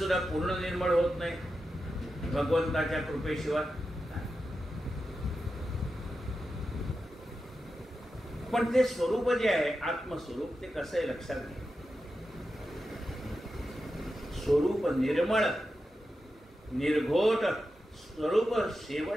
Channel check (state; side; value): normal; both; correlation 0.90